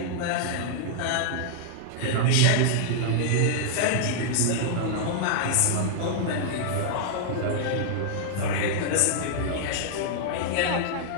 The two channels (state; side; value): different; both; correlation -0.01